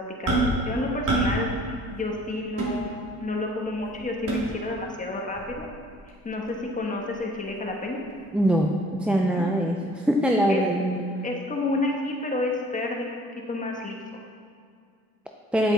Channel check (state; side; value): normal; both; correlation 0.55